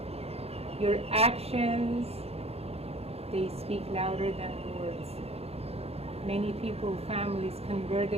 your actions, they speak louder than words. Many people, families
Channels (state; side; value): late; left; 0.29 ms